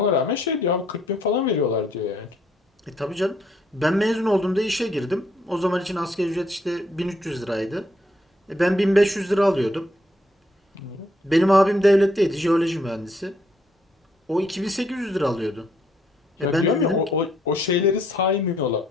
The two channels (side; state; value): both; normal; correlation 0.70